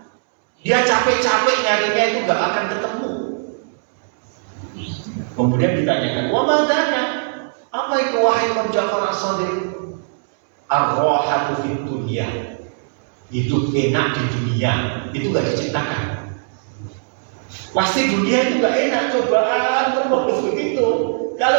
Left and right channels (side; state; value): left; silent; 66 dB below the other